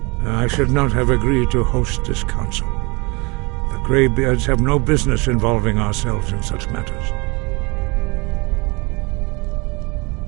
I should not have agreed to host this council. The Greybeards have no business involving ourselves in such matters.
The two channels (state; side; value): quieter; left; 27.7 dB